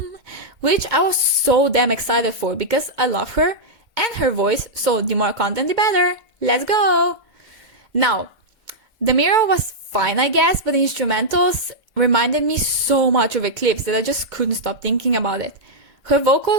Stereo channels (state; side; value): late; left; 2.1 ms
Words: which I was so damn excited for because I love her and her voice, so the more content the better. Let's go! Now, the mirror was fine I guess, but the instrumentals reminded me so much of Eclipse that I just couldn't stop thinking about it. Her